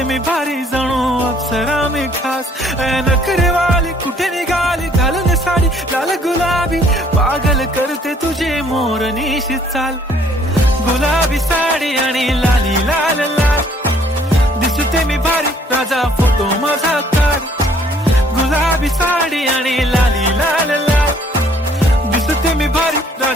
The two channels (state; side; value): normal; both; correlation 0.61